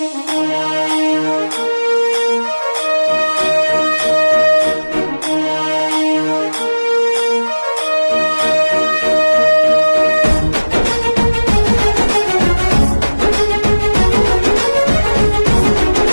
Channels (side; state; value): both; inverted; correlation -1.00